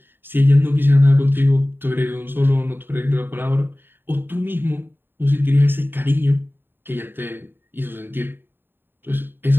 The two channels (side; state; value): left; late; 0.098 ms